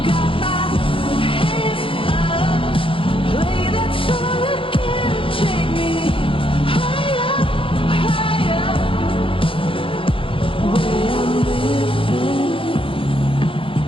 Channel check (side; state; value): right; late; 0.26 ms